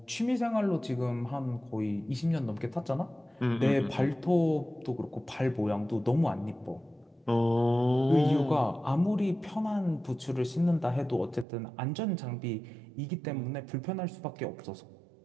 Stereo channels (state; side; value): drops out; left; at 11.5 s